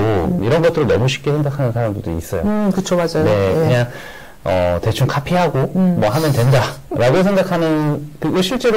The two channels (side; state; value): both; identical; correlation 1.00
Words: 이런 것들을 너무 쉽게 생각하는 사람들도 있어요. 그쵸, 맞아요. 그냥 대충 카피하고 뭐 하면 된다라고 생각하는 그리고